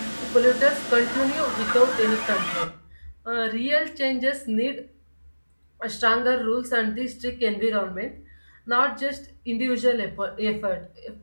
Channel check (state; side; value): inverted; both; correlation -1.00